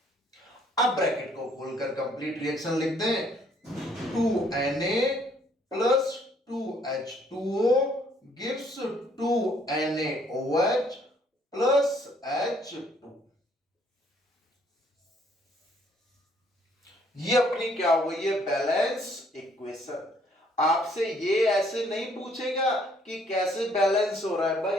अब ब्रैकेट को खोलकर कंप्लीट रिएक्शन लिख दें, 2Na plus 2H2O gives 2NaOH plus H2। ये अपनी क्या हो गई है, बैलेंस इक्वेशन। आपसे ये ऐसे नहीं पूछेगा कि कैसे बैलेंस हो रहा है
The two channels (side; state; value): both; normal; correlation 0.64